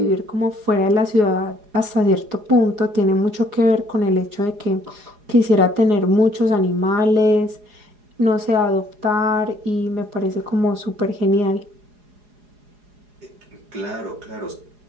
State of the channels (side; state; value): left; late; 4.8 ms